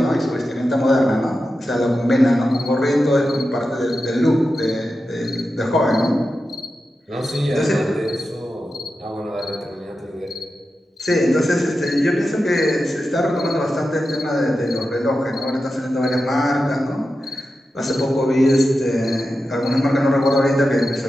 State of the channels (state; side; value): normal; both; correlation 0.91